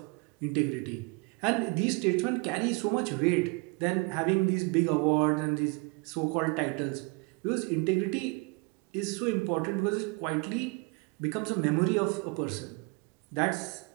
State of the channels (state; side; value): quieter; left; 30.0 dB